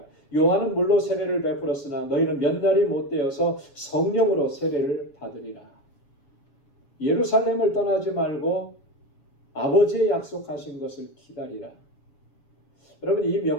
요한은 물로 세례를 베풀었으나 너희는 몇 날이 못되어서 성령으로 세례를 받으리라. 예루살렘을 떠나지 말고 아버지의 약속하신 것을 기다리라. 여러분 이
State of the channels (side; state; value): right; late; 7.1 ms